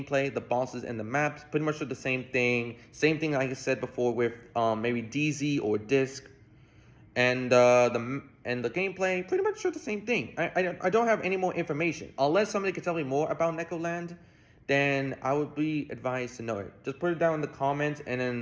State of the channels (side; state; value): both; identical; correlation 1.00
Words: the bosses, and the maps, pretty much are the same thing. Same thing like I said before with maybe DZ or Disc. And the gameplay, pretty much are the same thing. I don't have any more information. Unless somebody could tell me more about Necoland, then I would be advised to know it. Just put it down in the comments, and